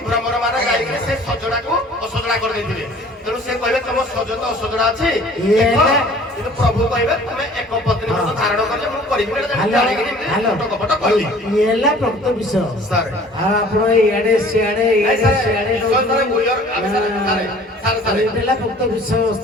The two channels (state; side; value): normal; both; correlation 0.50